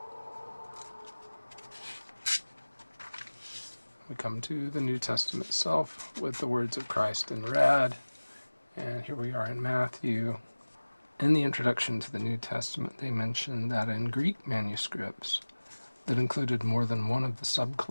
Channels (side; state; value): both; inverted; correlation -1.00